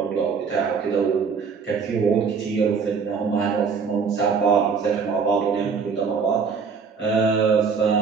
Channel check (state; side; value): quieter; left; 5.6 dB